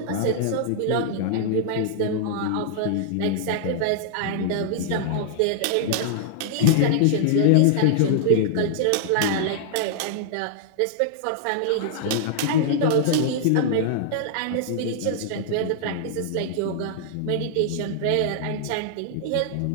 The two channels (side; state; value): both; different; correlation -0.01